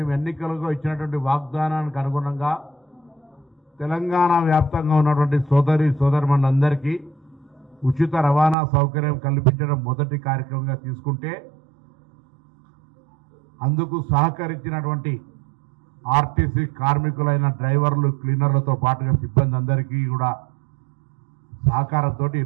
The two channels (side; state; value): left; drops out; at 8.6 s